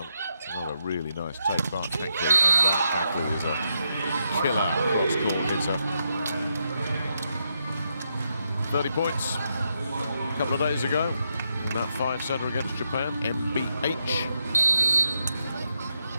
Another really nice take by Hankley, and that Hankley is a killer cross-court hitter. 30 points a couple of days ago. That 5-setter against Japan, MBH.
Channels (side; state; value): both; inverted; correlation -0.81